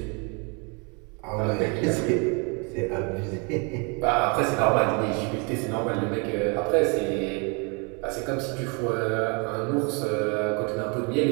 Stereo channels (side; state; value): left; quieter; 33.4 dB